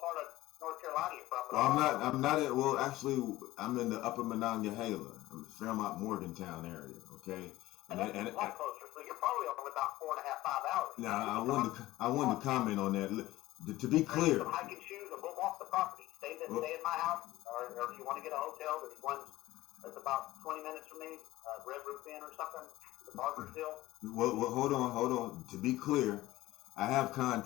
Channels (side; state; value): right; quieter; 17.0 dB